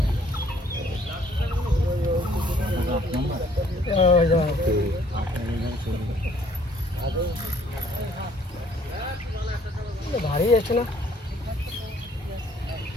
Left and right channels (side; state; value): both; normal; correlation 0.61